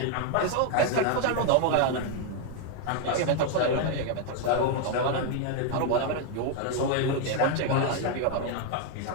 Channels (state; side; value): different; both; correlation 0.01